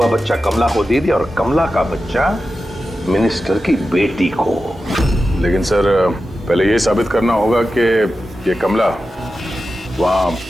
बच्चा कमला को दे दिया और कमला का बच्चा मिनिस्टर की बेटी को। लेकिन सर पहले ये साबित करना होगा कि ये कमला वहाँ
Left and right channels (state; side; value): normal; both; correlation 0.92